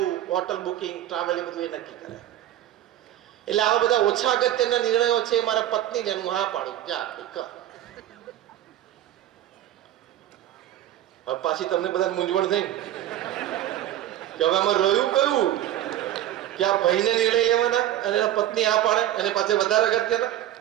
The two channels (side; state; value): left; quieter; 12.7 dB